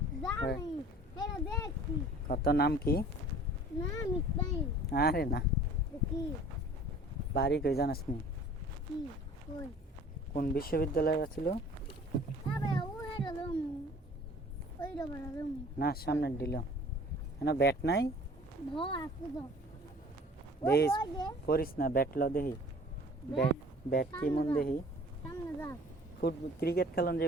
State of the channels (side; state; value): both; normal; correlation 0.48